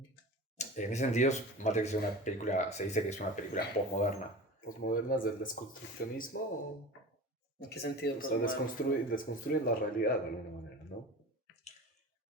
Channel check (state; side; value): normal; both; correlation 0.34